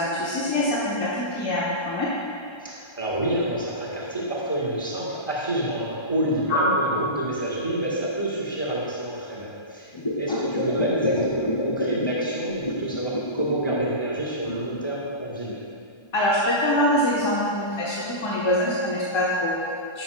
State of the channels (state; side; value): late; right; 1.3 ms